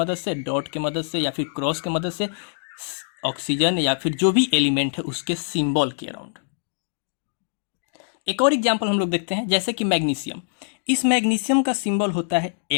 से, डॉट के मदद से या फिर क्रॉस के मदद से, ऑक्सीजन या फिर जो भी एलिमेंट है उसके सिंबल के अराउंड। एक और एग्जांपल हम लोग देखते हैं, जैसे कि मैग्नीशियम। इस मैग्नीशियम का सिंबल होता है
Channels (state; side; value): silent; right; digital silence